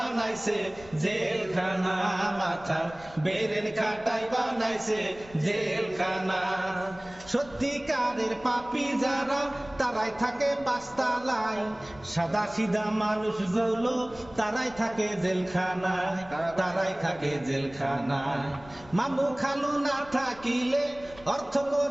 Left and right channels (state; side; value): noise; left; rumble, 21 dB below the sound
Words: জেলখানা, মাথার বেরেন খাটাই বানাইছে জেলখানা। সত্যিকারের পাপী যারা তারাই থাকে পাঁচতলায়, সাদা সিধা মানুষগুলো তারাই থাকে জেলখানায়, তারাই থাকে জেলখানায়। মামু খালু না থাকিলে, অর্থ